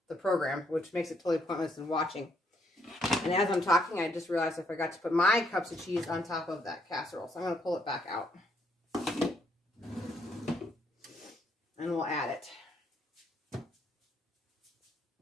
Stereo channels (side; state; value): both; normal; correlation 0.71